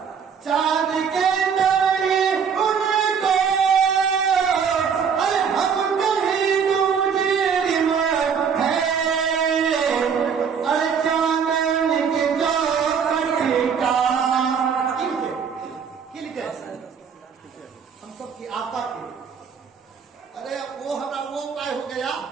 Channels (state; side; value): quieter; left; 6.7 dB